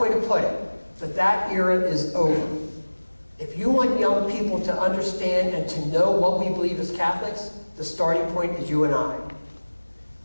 to put it, but that era is over. If you want young people to understand and to know what we believe as Catholics, the starting point is you and I.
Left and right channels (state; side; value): inverted; both; correlation -1.00